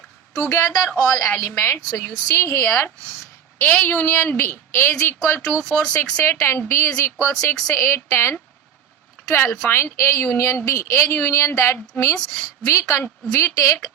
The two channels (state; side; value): quieter; left; 8.4 dB